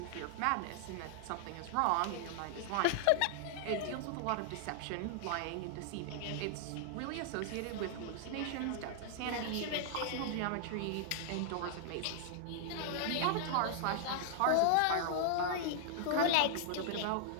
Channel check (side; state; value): both; different; correlation -0.01